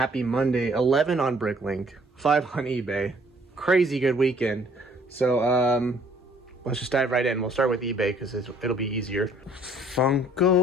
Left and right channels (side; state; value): both; normal; correlation 0.59